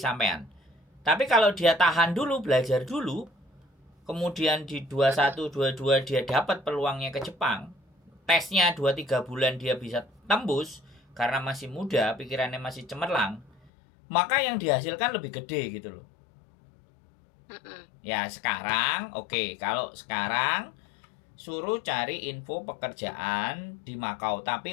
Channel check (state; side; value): drops out; right; at 13.7 s